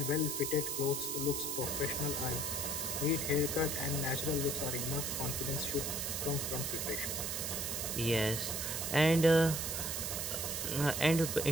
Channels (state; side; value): noise; right; hiss, 2 dB below the sound